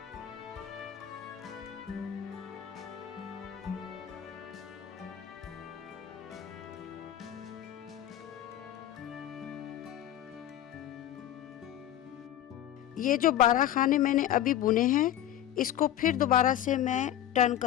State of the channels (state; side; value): quieter; right; 11.8 dB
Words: ये जो 12 खाने मैंने अभी बुने हैं इसको फिर दोबारा से मैं टर्न